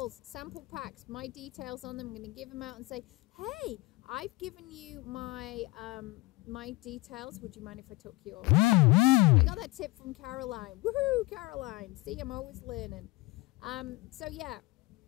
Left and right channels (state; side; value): quieter; right; 22.3 dB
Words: sample packs, my details on them. I'm going to give them out and say, hey, I've given you my my details. Would you mind if I took yours? I got that tip from Caroline. Woohoo, Caroline. See, I'm always learning. So yeah,